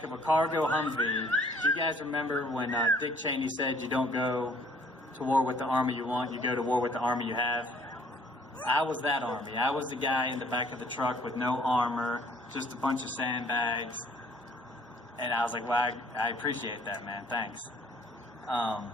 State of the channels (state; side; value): normal; both; correlation 0.59